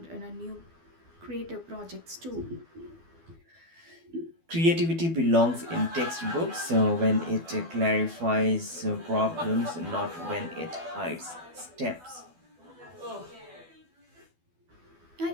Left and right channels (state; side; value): late; left; 12 ms